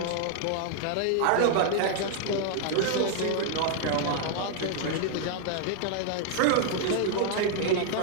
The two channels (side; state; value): both; different; correlation 0.00